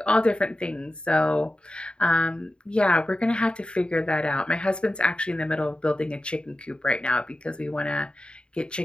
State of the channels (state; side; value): late; right; 0.053 ms